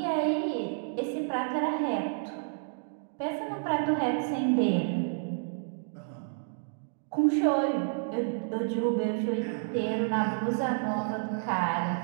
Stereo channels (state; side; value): silent; left; digital silence